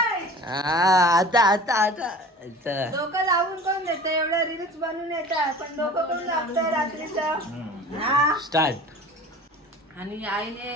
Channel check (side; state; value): both; normal; correlation 0.40